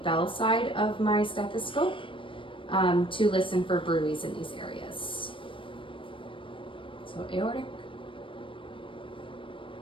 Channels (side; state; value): right; late; 0.25 ms